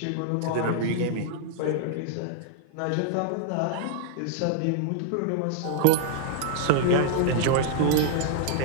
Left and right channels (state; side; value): different; both; correlation -0.01